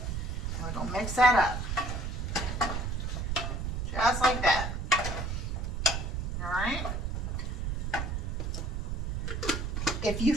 we're going to mix that up. Just like that. Alright? If you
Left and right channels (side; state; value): right; noise; rumble, 2 dB below the sound